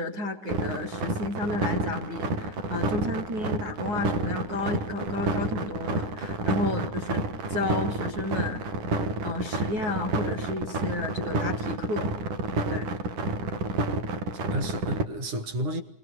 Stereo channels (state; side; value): late; left; 10 ms